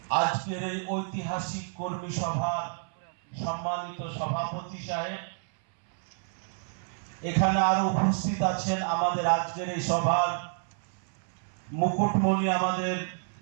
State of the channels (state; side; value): silent; left; 58 dB below the other